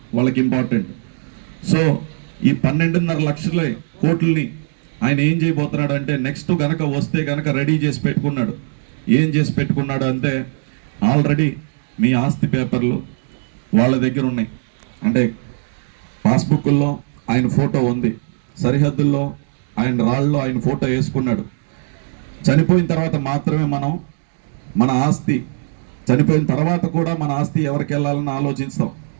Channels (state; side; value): silent; left; digital silence